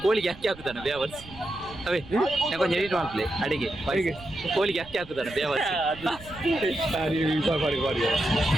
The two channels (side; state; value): right; noise; rumble, 18 dB below the sound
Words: ಕೋಳಿಗೆ ಅಕ್ಕಿ ಹಾಕುತ್ತಾನೆ ಬೇವರ್ಸ್. ಅವೇ ನೆಕ್ಕೊಂದು ಎಡಿಟ್ ಮಾಡ್ಲೆ ಅಡಿಗೆ ಕೋಳಿಗೆ ಅಕ್ಕಿ ಹಾಕುತ್ತಾನೆ ಬೇವರ್ಸ್.